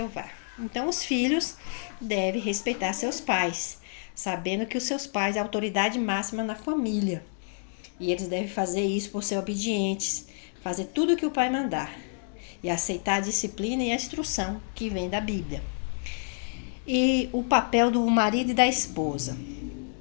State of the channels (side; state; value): right; silent; digital silence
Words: Então, os filhos devem respeitar seus pais, sabendo que os seus pais é a autoridade máxima na família. E eles devem fazer isso por ser obedientes, fazer tudo o que o pai mandar e aceitar a disciplina e a instrução que vem da Bíblia. E o papel do marido e da esposa.